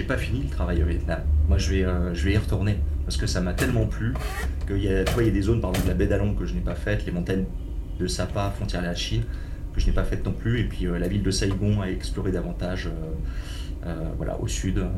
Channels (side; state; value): both; identical; correlation 1.00